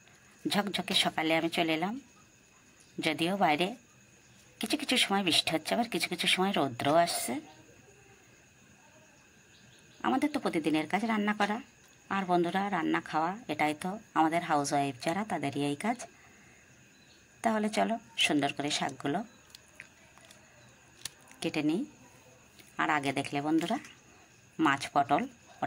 ঝকঝকে সকালে আমি চলে এলাম। যদিও বাইরে কিছু কিছু সময় বৃষ্টি হচ্ছে, আবার কিছু কিছু সময় রৌদ্রও আসছে। আমাদের তো প্রতিদিনের কাজ রান্না করা, আর বন্ধুরা রান্না খাওয়া, এটাই তো আমাদের হাউস ওয়াইফ যারা তাদেরই এই কাজ। তাহলে চলো সুন্দর করে শাকগুলো কেটে নিই। আর আগে দেখলে বন্ধুরা মাছ পটল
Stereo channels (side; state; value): both; identical; correlation 1.00